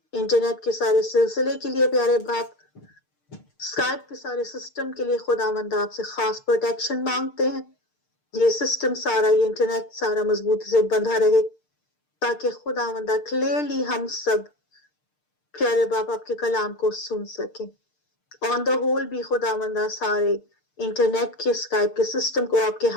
انٹرنیٹ کے سارے سلسلے کے لیے پیارے باپ، اسکائپ کے سارے سسٹم کے لیے خداوندہ آپ سے خاص پروٹیکشن مانگتے ہیں، یہ سسٹم سارا، یہ انٹرنیٹ سارا مضبوطی سے بندھا رہے تاکہ خداوندہ کلیئرلی ہم سب پیارے باپ آپ کے کلام کو سن سکیں۔ آن دا ہول بھی خداوندہ سارے انٹرنیٹ کے اسکائپ کے سسٹم کو آپ کے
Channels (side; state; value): right; late; 6.6 ms